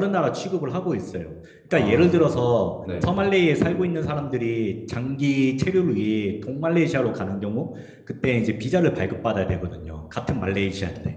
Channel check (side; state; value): both; identical; correlation 1.00